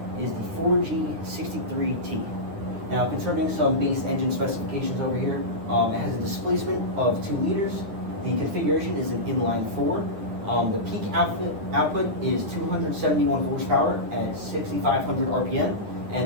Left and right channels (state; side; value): late; left; 9.8 ms